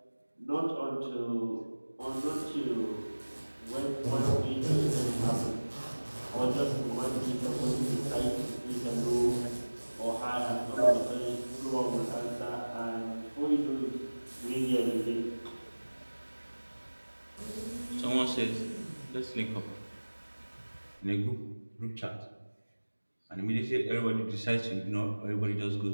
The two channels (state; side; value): inverted; both; correlation -1.00